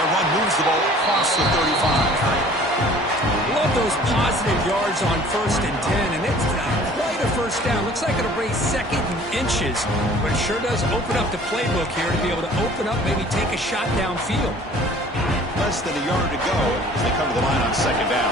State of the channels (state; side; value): normal; both; correlation 0.50